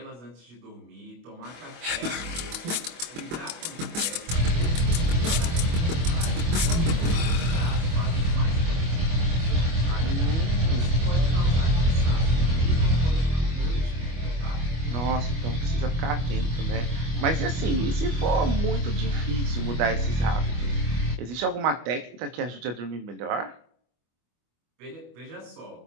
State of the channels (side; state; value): left; late; 25 ms